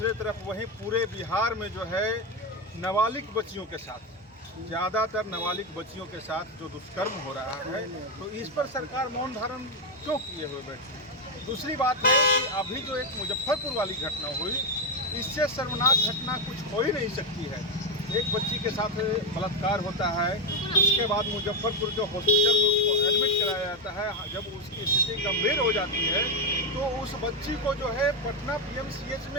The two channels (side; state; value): both; normal; correlation 0.08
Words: तरफ वहीं पूरे बिहार में जो है नाबालिग बच्चियों के साथ, ज़्यादातर नाबालिग बच्चियों के साथ जो दुष्कर्म हो रहा है, तो इस पर सरकार मौन धारण क्यों किए हुए बैठी? दूसरी बात है कि अभी जो एक मुजफ्फरपुर वाली घटना हुई, इससे शर्मनाक घटना कुछ हो ही नहीं सकती है। एक बच्ची के साथ बलात्कार होता है, उसके बाद मुजफ्फरपुर के हॉस्पिटल में उसको एडमिट कराया जाता है। जब उसकी स्थिति गंभीर हो जाती है तो उस बच्ची को जो है पटना PMCH